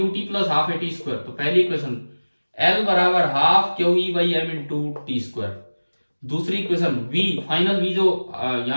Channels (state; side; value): inverted; both; correlation -1.00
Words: plus half at square, तो पहली इक्वेशन L बराबर half QE by M into T square. दूसरी इक्वेशन V, फाइनल V जो